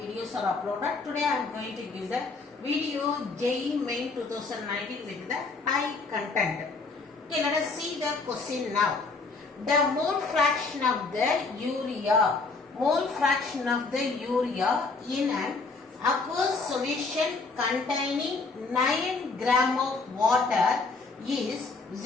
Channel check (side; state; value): right; quieter; 4.0 dB